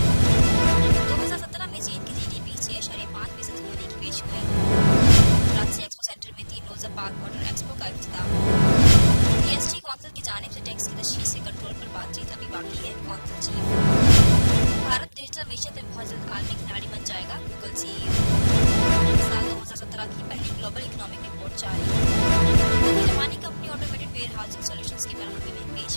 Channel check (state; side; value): inverted; both; correlation -1.00